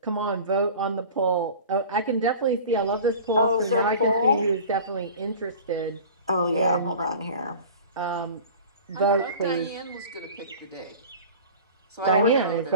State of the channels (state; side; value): inverted; both; correlation -0.40